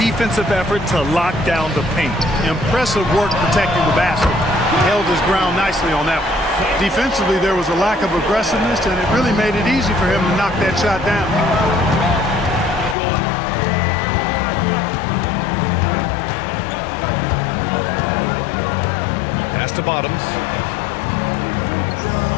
effort to lock down the paint. Impressive work protecting the basket. He held his ground nicely on that one. Defensively, there was a lack of aggressiveness, and it really made it easy for him to knock that shot down. Pass to Bottoms.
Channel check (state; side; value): drops out; right; at 13.0 s